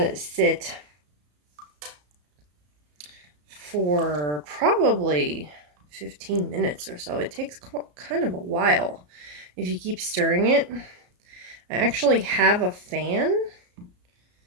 it sit for probably 15 minutes or so. It takes kind of a while if you keep stirring it. I actually have a fan,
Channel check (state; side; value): late; left; 34 ms